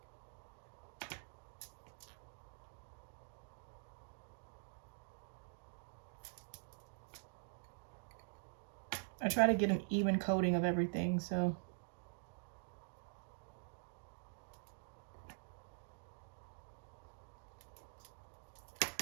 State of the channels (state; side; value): silent; left; digital silence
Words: I try to get an even coating of everything, so.